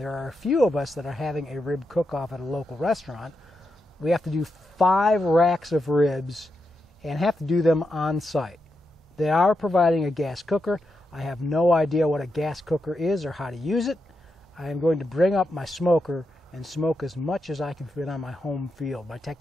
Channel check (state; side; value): normal; both; correlation 0.85